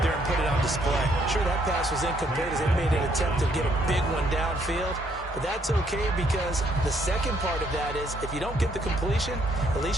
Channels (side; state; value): both; normal; correlation 0.69